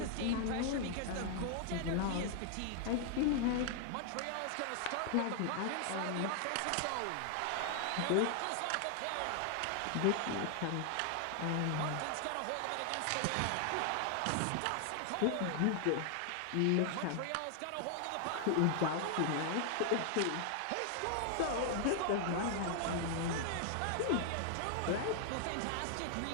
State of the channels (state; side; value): different; both; correlation 0.00